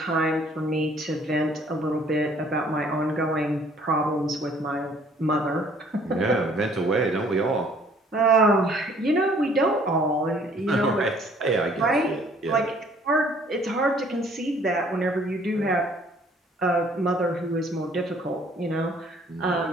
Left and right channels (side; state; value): both; normal; correlation 0.58